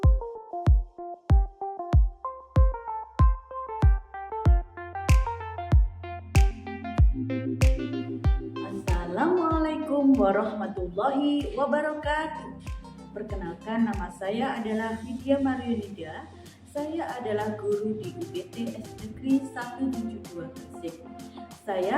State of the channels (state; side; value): identical; both; correlation 1.00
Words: warahmatullahi wabarakatuh. Perkenalkan, nama saya adalah Vidya Mariunida. Saya adalah guru di UPT Negeri 172 Gresik.